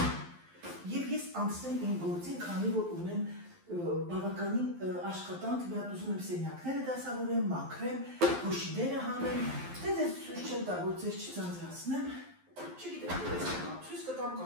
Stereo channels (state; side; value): late; left; 11 ms